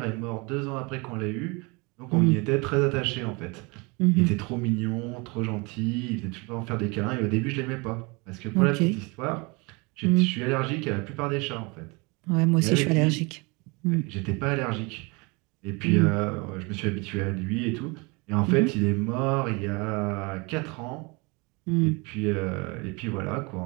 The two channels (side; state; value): left; quieter; 28.1 dB